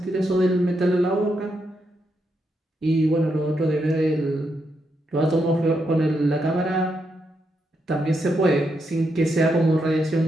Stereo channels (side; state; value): both; normal; correlation 0.81